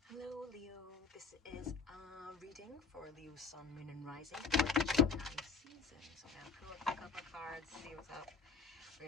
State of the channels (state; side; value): quieter; right; 5.1 dB